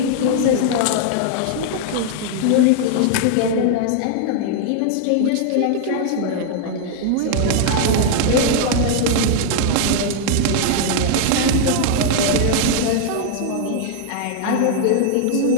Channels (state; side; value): different; both; correlation 0.00